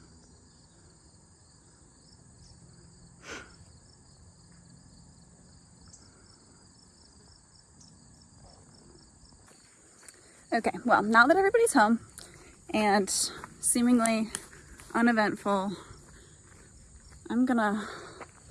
Okay, well, now that everybody's home and seemingly uneventful, I'm gonna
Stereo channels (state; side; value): identical; both; correlation 1.00